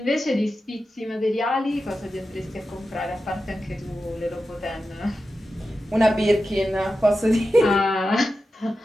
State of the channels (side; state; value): both; normal; correlation 0.91